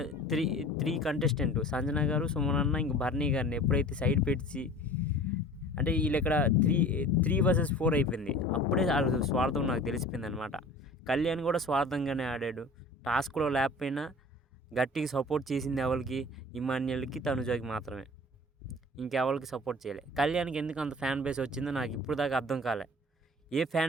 త్రీ కంటెస్టెంట్ సంజన గారు, సుమన్ అన్న, ఇంక బర్నీ గారిని ఎప్పుడైతే సైడ్ పెట్టి అంటే వీళ్ళు ఇక్కడ 3 vs 4 అయిపోయింది. అప్పుడే వాళ్ళ స్వార్థం నాకు తెలిసిపోయింది అనమాట. కళ్యాణ్ కూడా స్వార్థంగానే ఆడాడు. టాస్క్లో లేకపోయినా గట్టిగా సపోర్ట్ చేసింది ఎవరికి? ఇమాన్యుయల్కి, తనుజకి మాత్రమే. ఇంకెవరికి సపోర్ట్ చేయలే. కళ్యాణ్కి ఎందుకు అంత ఫ్యాన్ బేస్ వచ్చిందో నాకు ఇప్పుడు దాకా అర్థం కాలే. ఏ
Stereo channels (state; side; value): normal; both; correlation 0.43